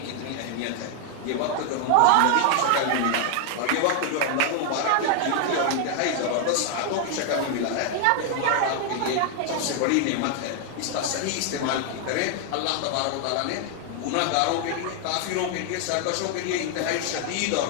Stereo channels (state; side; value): different; both; correlation 0.00